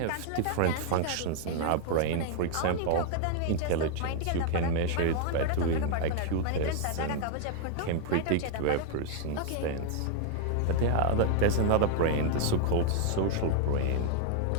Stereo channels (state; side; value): different; both; correlation 0.00